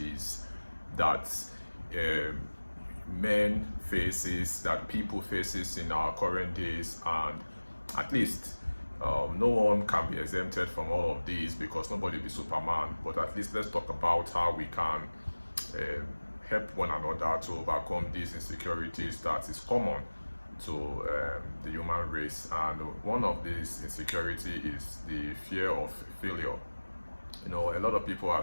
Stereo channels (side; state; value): both; inverted; correlation -1.00